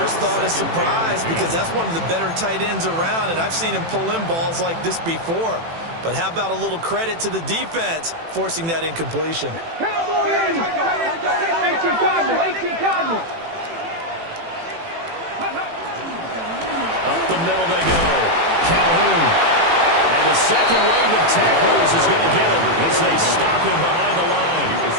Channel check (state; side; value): late; left; 18 ms